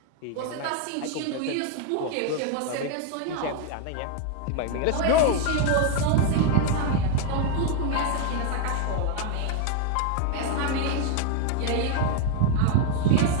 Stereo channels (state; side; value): different; both; correlation 0.00